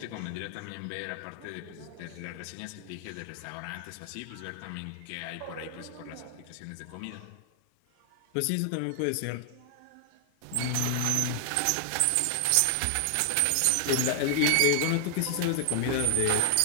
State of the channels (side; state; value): both; different; correlation 0.00